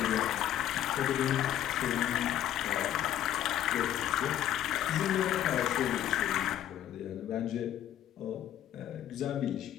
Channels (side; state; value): right; quieter; 11.4 dB